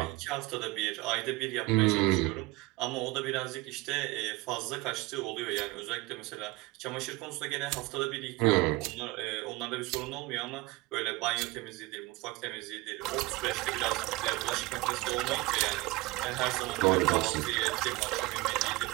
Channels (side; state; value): left; quieter; 21.9 dB